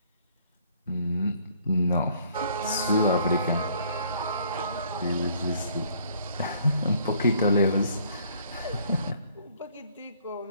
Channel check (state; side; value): inverted; both; correlation -0.61